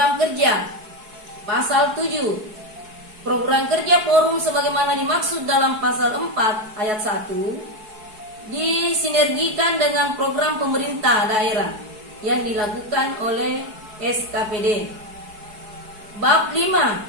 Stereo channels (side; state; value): left; late; 4.7 ms